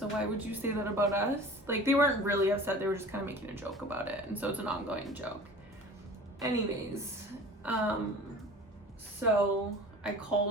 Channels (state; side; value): normal; both; correlation 0.41